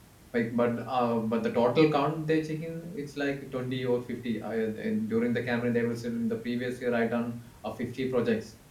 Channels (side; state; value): both; identical; correlation 1.00